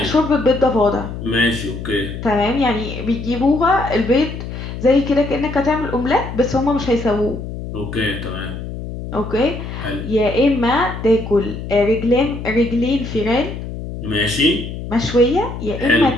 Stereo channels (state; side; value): noise; left; hum, 8 dB below the sound